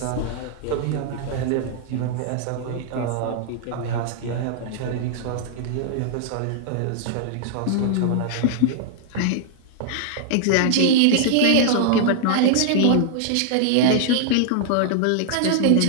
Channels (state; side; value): different; both; correlation -0.01